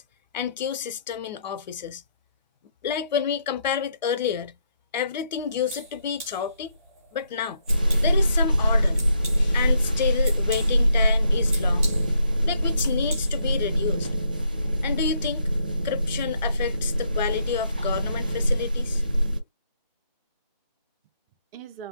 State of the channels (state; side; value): inverted; both; correlation -0.75